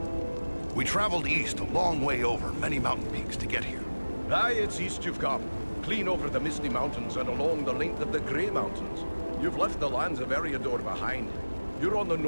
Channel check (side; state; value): both; inverted; correlation -1.00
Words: We traveled east a long way over many mountain peaks to get here. Aye, it's east you've come. Clean over the Misty Mountains and along the length of the Grey Mountains. You've left the lands of Eriador behind. You're on the